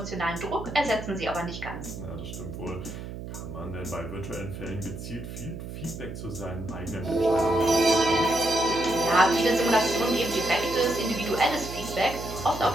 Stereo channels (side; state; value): right; noise; hum, 9 dB below the sound